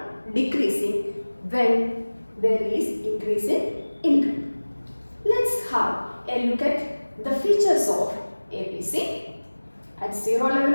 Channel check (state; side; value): inverted; both; correlation -1.00